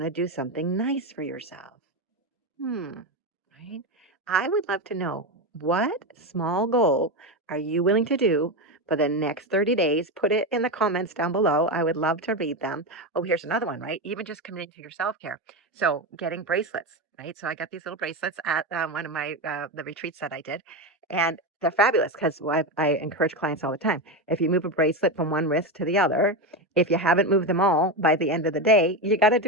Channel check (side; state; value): both; normal; correlation 0.14